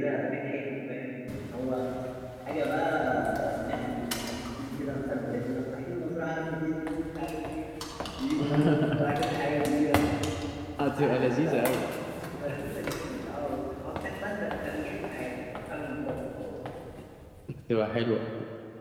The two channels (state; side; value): identical; both; correlation 1.00